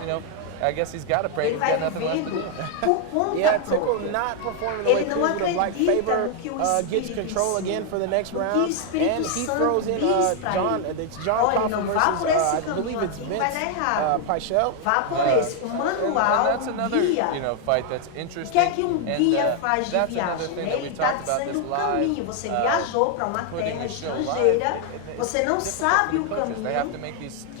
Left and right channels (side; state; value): both; different; correlation 0.01